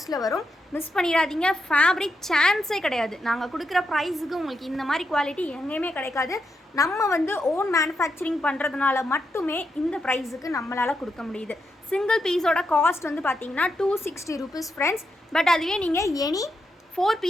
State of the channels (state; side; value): normal; both; correlation 0.83